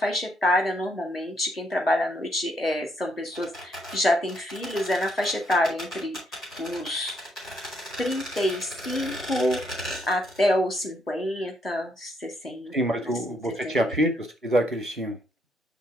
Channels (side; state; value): both; normal; correlation 0.74